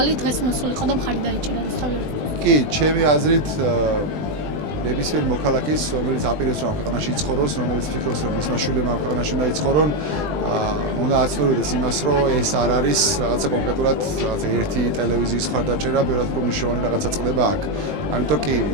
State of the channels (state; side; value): late; left; 20 ms